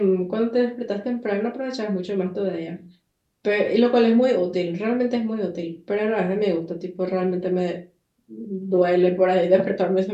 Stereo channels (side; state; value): both; identical; correlation 1.00